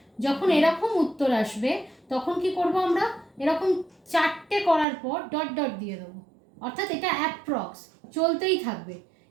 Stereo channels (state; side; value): drops out; left; at 4.9 s